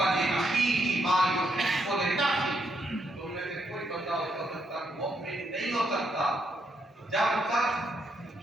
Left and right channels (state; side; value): normal; both; correlation 0.78